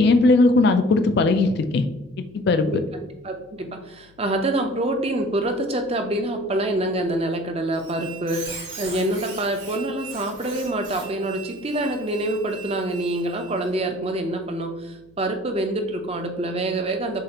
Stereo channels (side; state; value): left; noise; hum, 30 dB below the sound